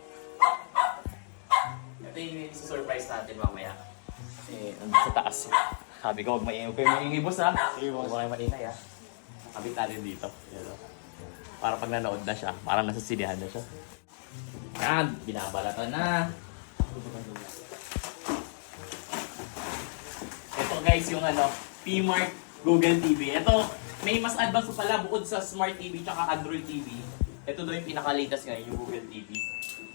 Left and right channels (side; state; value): right; silent; digital silence